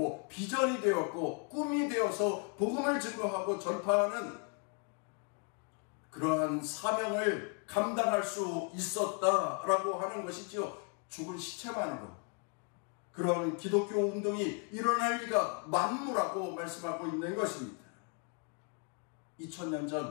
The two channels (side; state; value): right; quieter; 36.1 dB